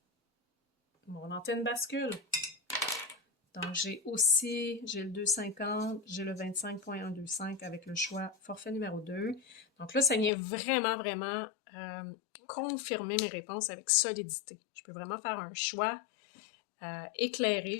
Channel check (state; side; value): drops out; right; at 10.3 s